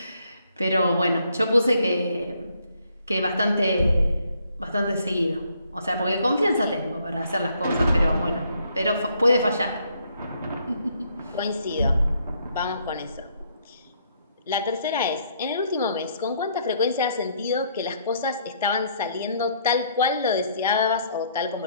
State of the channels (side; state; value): both; inverted; correlation -0.69